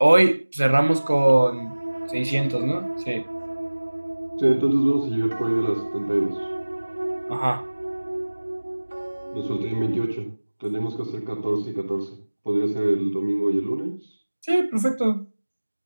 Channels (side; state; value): both; inverted; correlation -1.00